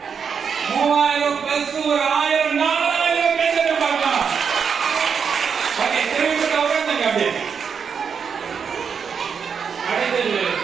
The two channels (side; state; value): left; quieter; 6.5 dB